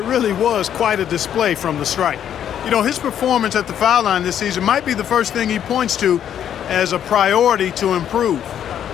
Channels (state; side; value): quieter; right; 9.7 dB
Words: really was quite a display from the stripe. You know, his performance at the foul line this season might be the first thing he points to as a priority to improve.